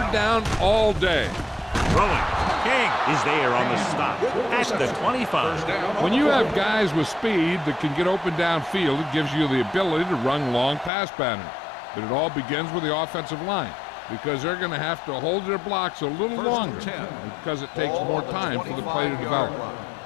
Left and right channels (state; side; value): drops out; right; at 10.9 s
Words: down all day. Throwing. King is there on the stop at the 25. When you have guys with speed that can get open downfield, it gives you the ability to run long pass patterns. But it all begins with the offensive line because they're going to have to hold their blocks a little longer because it takes more time for the play to develop.